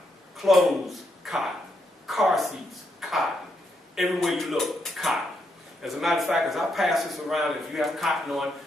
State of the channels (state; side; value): normal; both; correlation 0.79